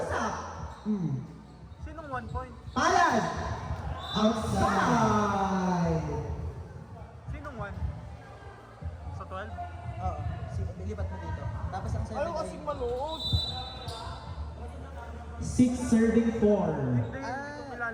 Sinong 1 point? Palad. Outside. Sinong 1? Sa 12? Oo. Lipat mo dito. Tapos ang 7 ay... malood. 6 serving 4. Hindi, hindi ko Ah.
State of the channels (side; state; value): both; identical; correlation 1.00